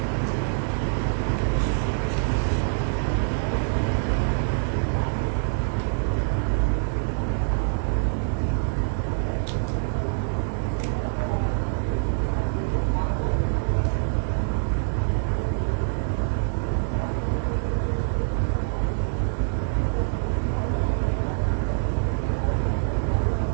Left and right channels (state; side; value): silent; left; digital silence